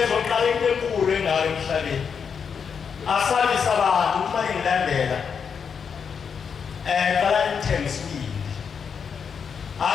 into enkulu engayo emhlabeni. Asabisa abantu uma ngilandela. Qala nithenge isibindi.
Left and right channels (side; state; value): right; quieter; 6.6 dB